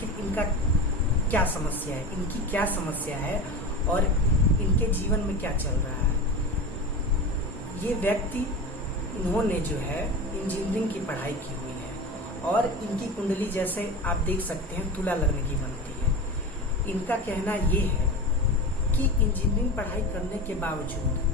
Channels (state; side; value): normal; both; correlation 0.27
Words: इनका क्या समस्या है, इनकी क्या समस्या है और इनके जीवन में क्या चल रहा है। ये व्यक्ति, इन्होंने जो है इंजीनियरिंग की पढ़ाई की हुई है और इनकी कुंडली जैसे आप देख सकते हैं तुला लग्न की बनती है। इनका कहना ये है कि इंजीनियरिंग पढ़ाई करने के